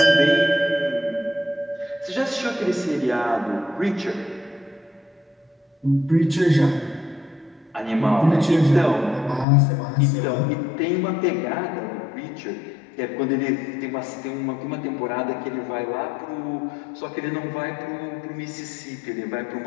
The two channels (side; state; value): right; drops out; at 9.5 s